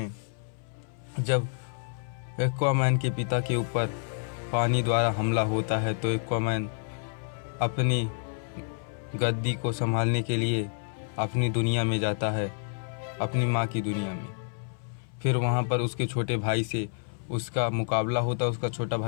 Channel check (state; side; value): silent; right; 59 dB below the other